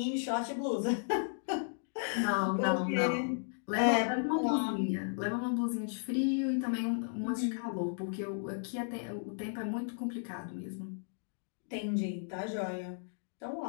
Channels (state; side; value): silent; right; digital silence